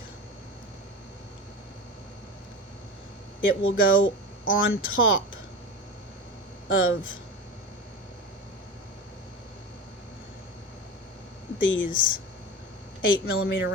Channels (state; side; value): normal; both; correlation 0.28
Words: It will go on top of these 8mm